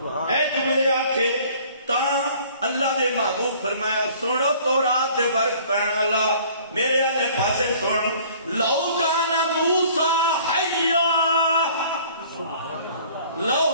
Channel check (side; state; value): both; inverted; correlation -0.52